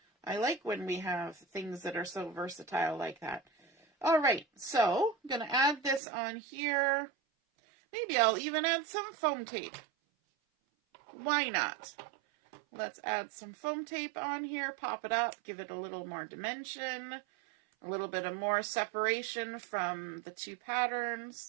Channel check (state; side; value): drops out; left; at 6.0 s